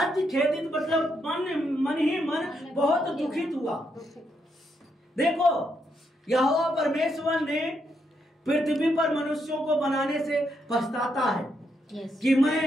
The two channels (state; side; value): normal; both; correlation 0.79